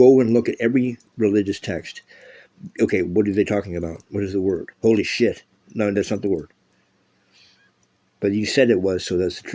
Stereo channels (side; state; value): both; identical; correlation 1.00